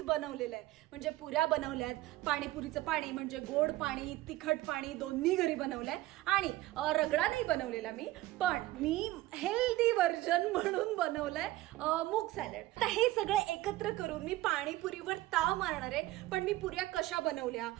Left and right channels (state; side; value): quieter; left; 17.1 dB